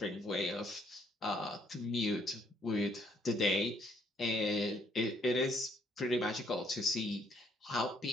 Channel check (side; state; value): both; normal; correlation 0.68